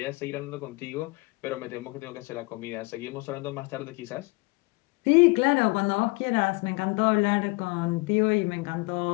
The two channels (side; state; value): right; quieter; 26.4 dB